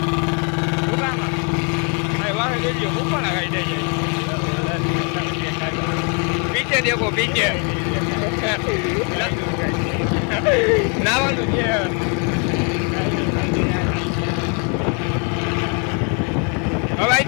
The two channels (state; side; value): quieter; right; 37.6 dB